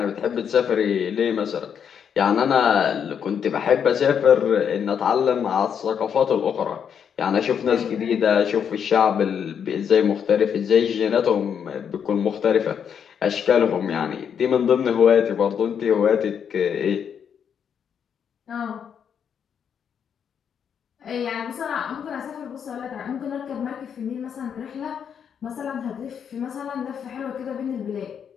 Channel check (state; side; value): quieter; right; 7.8 dB